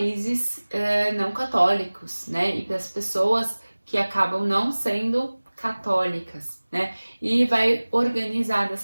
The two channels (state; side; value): inverted; both; correlation -1.00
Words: não católicos, né? E para as pessoas que acabam não sendo católicas, né? E vai organizar